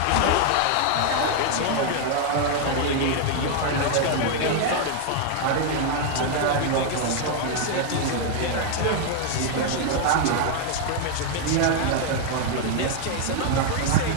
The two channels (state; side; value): different; both; correlation 0.00